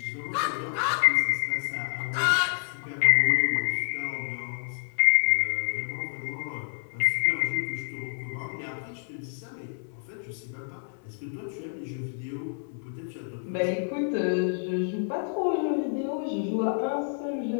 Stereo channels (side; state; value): right; silent; 59 dB below the other